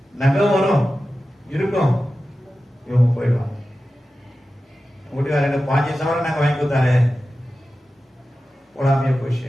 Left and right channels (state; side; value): normal; both; correlation 0.94